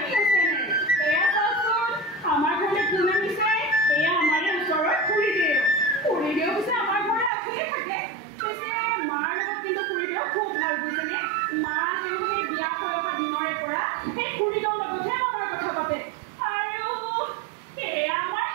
channel. এয়া চাওকচোন আমাৰ ঘৰলৈ কোনে নিছে এয়া আমাৰ ওচৰৰ খুৰীদেউ পিছে আমাৰ ঘৰলৈ আহিয়ে থাকে পিছে মাৰ লগত কিন্তু খুৰীদেউ খুব ভাল বুজিছেনে মা তেওঁলোকে বিয়া হৈ অহা দিনৰে পৰা সেই খুৰীদেউৰ লগতহে মনৰ কথা পাতে আৰু এয়া আমাৰ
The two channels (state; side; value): drops out; left; at 7.3 s